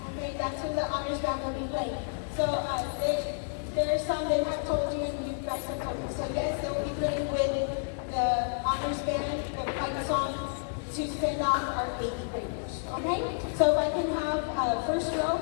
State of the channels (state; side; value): silent; right; 58 dB below the other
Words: Okay, that's when the honors band will be playing. So there are some that have told you and you guys have told me. So yes, they will be playing with the honors band, the fight song to send off our 8th graders. Okay? So if I can have first row